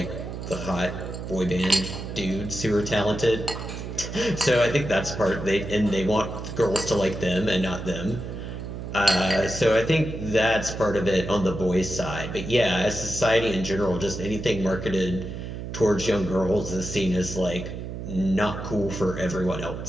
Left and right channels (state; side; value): noise; right; hum, 7 dB below the sound